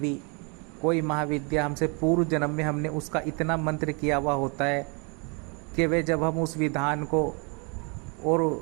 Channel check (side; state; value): left; quieter; 33.4 dB